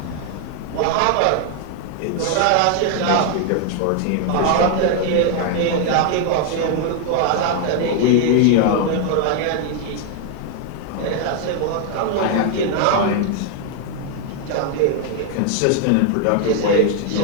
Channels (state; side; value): different; both; correlation 0.00